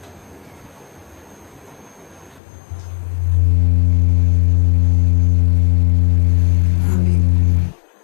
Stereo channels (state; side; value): drops out; right; at 2.4 s